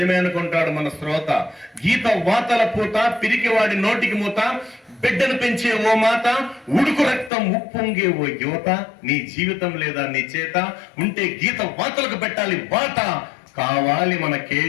అనుకుంటాడు మన శ్రోత. గీత వాతల పూత, పిరికివాడి నోటికి మూత, బిడ్డను పెంచే ఓ మాత, ఉడుకు రక్తం ఉప్పొంగే ఓ యువత. నీ జీవితం లేదా నీ చేత ఉంటే గీత వాతలకు పెట్టాలి వాత. కావాలి మన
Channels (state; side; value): drops out; right; at 7.3 s